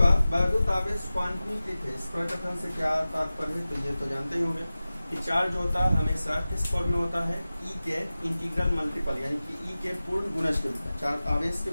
वैद्युत आवेश क्वांटमीकृत है। इस प्रकथन से क्या तात्पर्य है? तो ये तो जानते ही होंगे कि चार्ज होता है हमेशा किस फॉर्म में होता है, ई के इंटीग्रल मल्टीपल, यानी कि ई के पूर्ण गुणज के रूप में। चार्ज आवेश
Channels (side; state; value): both; inverted; correlation -0.96